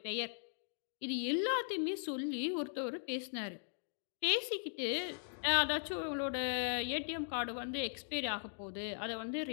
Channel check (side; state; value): right; silent; digital silence